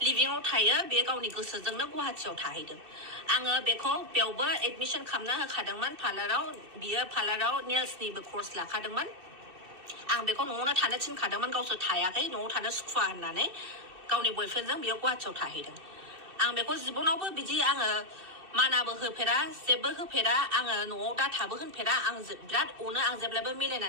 लिभिंआव थायो बे गावनि गोसोजोंनो गुवाहाटियाव थाहैदों आङो बेखौ बेयावबो एडमिसन खालामना होखादोंमोन पार्लाराव बियो पार्लाराव नेल्सनिबो कर्स लाखादोंमोन आं बेखौ न'आवनो थानो थिनखादोंमोन गावसोर थायाखै न'आव थानो सुखुवा होननानै गावनि बयफ्रेन्डजों बियो गुवाहाटियाव थाहैदों आं बेखौ जिबनावबो बिदि आङो मानाबो होफेरा जेबो होफेरा आङो न'आव दाथाबो होनफेरा आं बिराद अनो आं जेब्लाबो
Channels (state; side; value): late; left; 2.6 ms